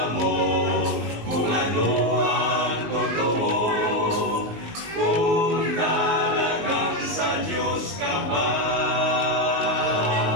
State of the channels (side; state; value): left; late; 19 ms